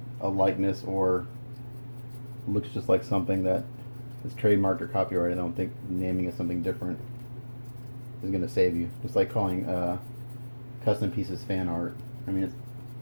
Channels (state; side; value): inverted; both; correlation -1.00